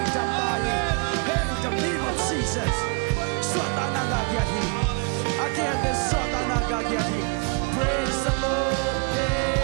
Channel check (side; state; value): left; quieter; 34.5 dB